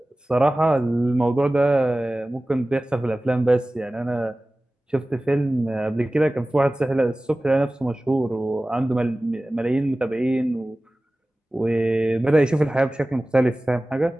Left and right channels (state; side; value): normal; both; correlation 0.97